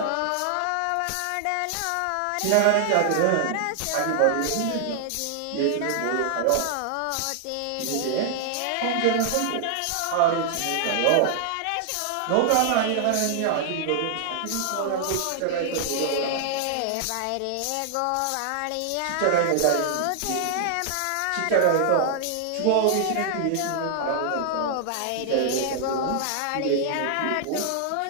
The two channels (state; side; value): different; both; correlation 0.00